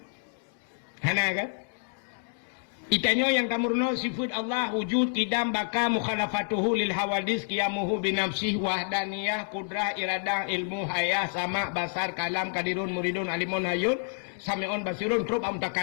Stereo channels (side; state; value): right; silent; digital silence